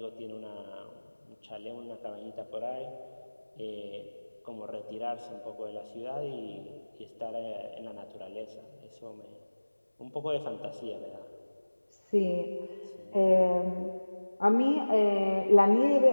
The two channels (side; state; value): both; inverted; correlation -1.00